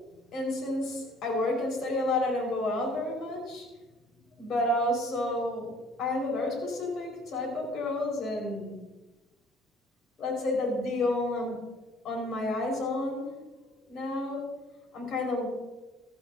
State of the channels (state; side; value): normal; both; correlation 0.55